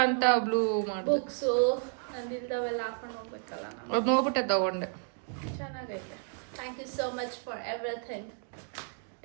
ಅಂತ ಬ್ಲೂ ಮಾಡಿದೆ. ಬುಕ್ಸು ನಂದು ಇಲ್ದವೆಲ್ಲ ಹಾಕೊಂಡು ಹೋಗ್ಬೇಕಲ್ಲ ನಾನು. ಅದು ನೋಡ್ಬಿಟ್ಟೆ ತಗೊಂಡೆ. ಚೆನ್ನಾಗೈತೆ. Thank you so much for everything.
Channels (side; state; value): left; silent; 57 dB below the other